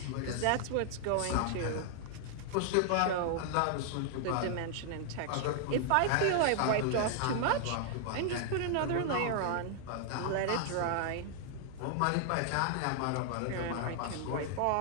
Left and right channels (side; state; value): both; different; correlation -0.01